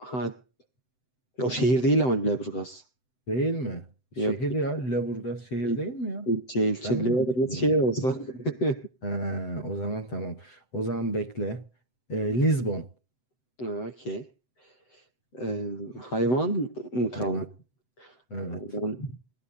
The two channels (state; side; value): late; right; 7.9 ms